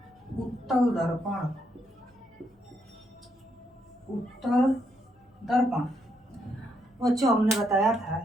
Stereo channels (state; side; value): normal; both; correlation 0.76